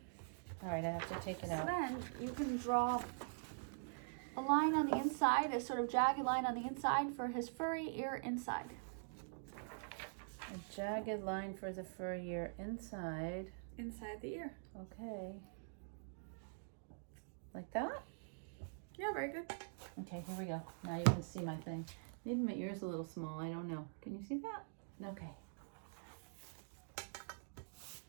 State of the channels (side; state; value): left; silent; digital silence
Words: All right, I have to take it So out. then you can draw a line on the inside, a sort of jagged line on the inside for his furry ear inside. A jagged line for the fur ear inside. Inside the ear. Okay. Like that? Yeah, very good. Okay, here we go. Now you can see my thing. Maybe my ear's a little small. I don't know. Can you see that? Okay.